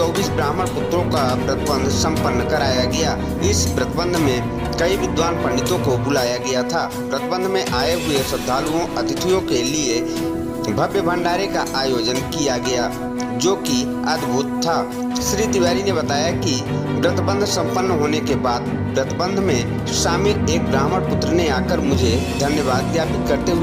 ब्राह्मण पुत्रों का व्रतबंध संपन्न कराया गया। इस व्रतबंध में कई विद्वान पंडितों को बुलाया गया था। व्रतबंध में आए हुए श्रद्धालुओं अतिथियों के लिए भव्य भंडारे का आयोजन किया गया, जो कि अद्भुत था। श्री तिवारी ने बताया कि व्रतबंध संपन्न होने के बाद व्रतबंध में शामिल एक ब्राह्मण पुत्र ने आकर मुझे धन्यवाद ज्ञापित करते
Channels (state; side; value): identical; both; correlation 1.00